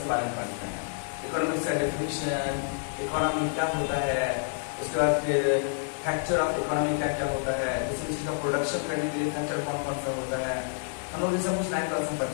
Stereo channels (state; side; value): silent; right; 59 dB below the other